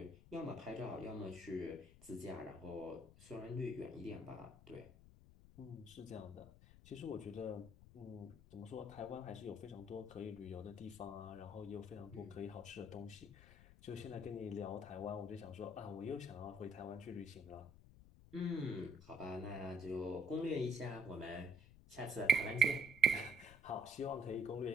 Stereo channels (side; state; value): left; noise; rumble, 20 dB below the sound